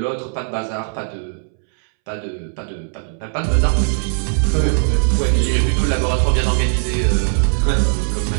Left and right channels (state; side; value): silent; left; 67 dB below the other